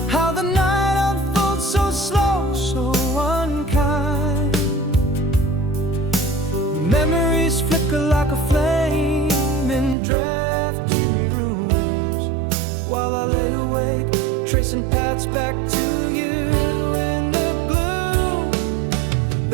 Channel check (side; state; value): left; drops out; at 10.0 s